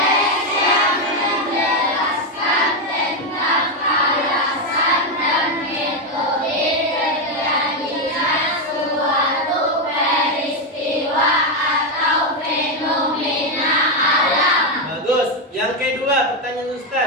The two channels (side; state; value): both; normal; correlation 0.06